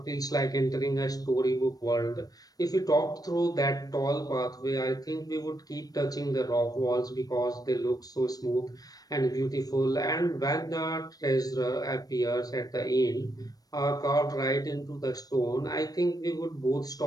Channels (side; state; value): right; late; 0.18 ms